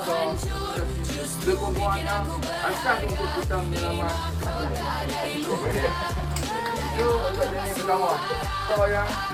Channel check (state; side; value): identical; both; correlation 1.00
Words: sekumpulannya asal untuk kita menyelamat. Itu untuk jenis pertama. So yang